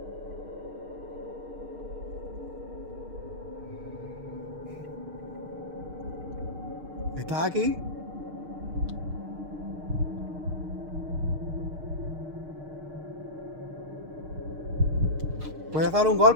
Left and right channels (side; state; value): left; late; 6.5 ms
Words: ¿Estás aquí? ¿Puedes dar un